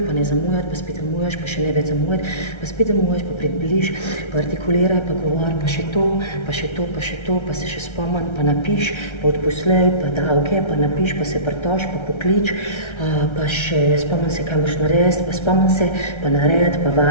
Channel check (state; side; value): late; right; 1.3 ms